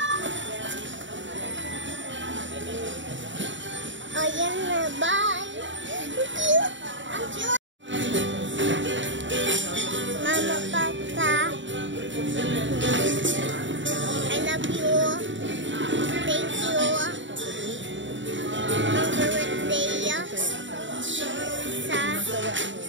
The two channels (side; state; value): left; late; 0.54 ms